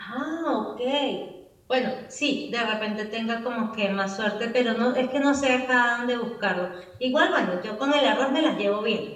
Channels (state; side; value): identical; both; correlation 1.00